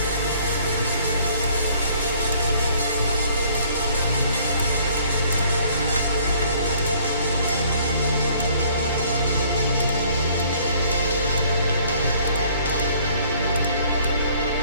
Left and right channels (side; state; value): both; inverted; correlation -0.59